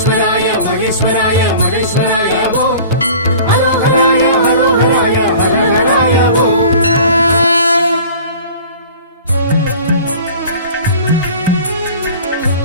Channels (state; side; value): inverted; both; correlation -0.43